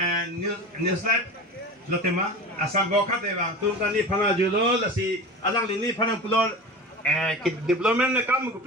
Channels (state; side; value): normal; both; correlation 0.31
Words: newslet lo tema asal bokat eva tu kan ni phana julo lasi alang ni phana pulo development na kam ko